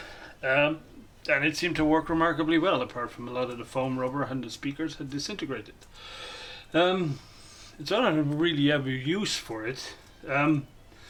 and it seemed to work remarkably well, apart from a lot of the foam rubber and the speakers had disintegrated. So I don't really have a use for it.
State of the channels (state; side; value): identical; both; correlation 1.00